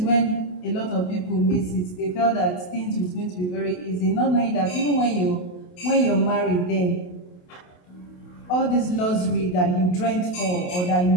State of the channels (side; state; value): right; late; 28 ms